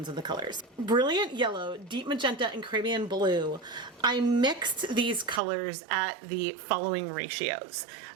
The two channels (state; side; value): drops out; left; at 5.4 s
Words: of the colors. Brilliant Yellow, Deep Magenta, and Caribbean Blue. I mixed these colors at the following ratios.